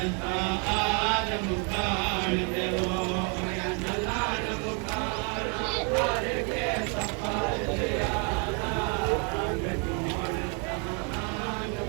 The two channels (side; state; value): left; quieter; 36.6 dB